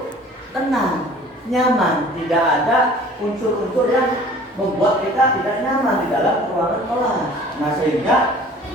tenang, nyaman, tidak ada unsur-unsur yang membuat kita tidak nyaman di dalam ruangan kelas. Nah, sehingga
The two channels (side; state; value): both; normal; correlation 0.48